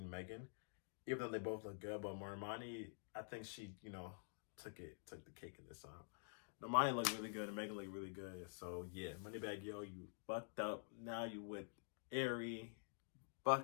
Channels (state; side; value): silent; right; digital silence